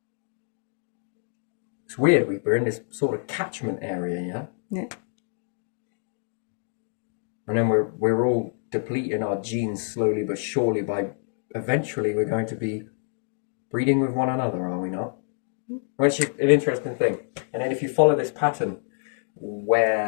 It's weird, we're in this sort of catchment area, yeah? Yeah. And then we're all depleting our genes slowly but surely by eventually we're going to be breeding with one another, are we not? Which is an interesting thing. And then if you follow this pattern,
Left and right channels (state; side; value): silent; right; digital silence